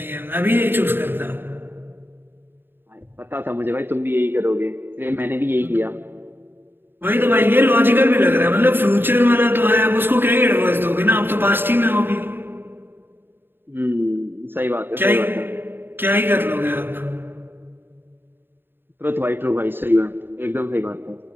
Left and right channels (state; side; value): late; left; 0.10 ms